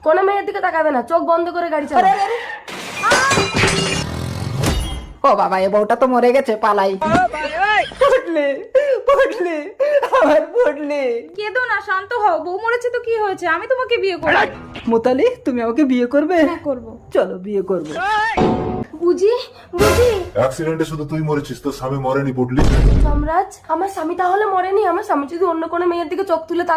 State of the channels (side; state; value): both; identical; correlation 1.00